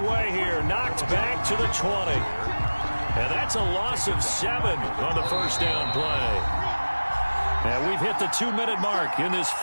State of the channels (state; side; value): inverted; both; correlation -1.00